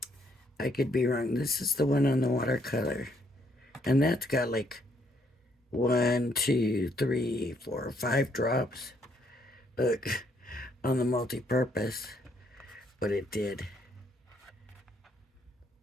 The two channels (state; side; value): normal; both; correlation 0.71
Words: I could be wrong. This is the one on the watercolor. And that's got like 1, 2, 3, 4, 5 drops. Look, on the multi-purpose. But it did.